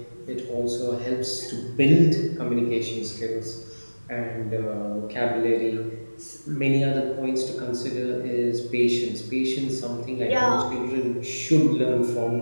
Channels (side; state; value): both; inverted; correlation -1.00